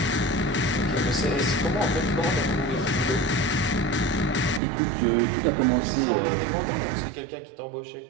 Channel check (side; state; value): left; drops out; at 4.6 s